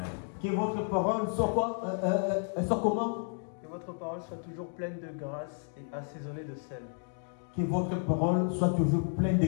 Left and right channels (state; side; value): silent; right; 56 dB below the other